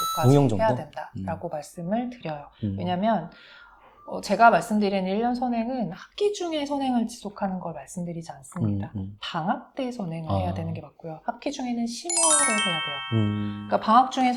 응용 정도? 해야 된다라고 말씀을 드려요. 왜냐면 제가 말씀드리는 1년 선행은 학기 중에 선행을 지속하는 걸 말씀드리지 않습니다. 방학 때 선행을 해야 되는 게 맞고요. 학기 중에는 심화를 해야 돼요. 그러니까 방학 중에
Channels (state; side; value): identical; both; correlation 1.00